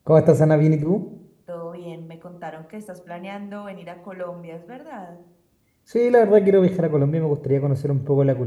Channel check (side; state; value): both; identical; correlation 1.00